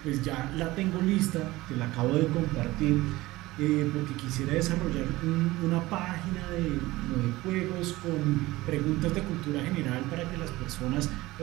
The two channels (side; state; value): left; quieter; 18.9 dB